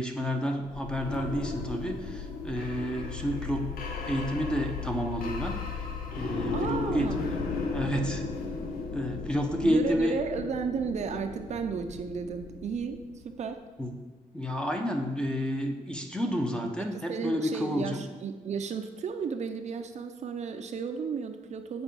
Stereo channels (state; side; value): normal; both; correlation 0.71